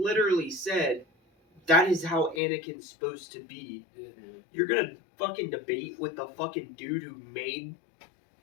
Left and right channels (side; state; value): right; drops out; at 2.4 s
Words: said that is how Anakin's supposed to be. Yeah. You're gonna fucking debate with the fucking dude who made.